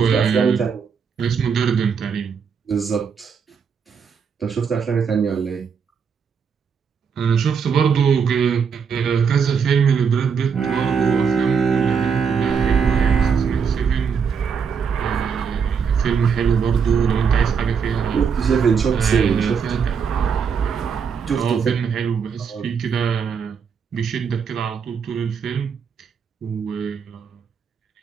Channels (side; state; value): left; quieter; 6.4 dB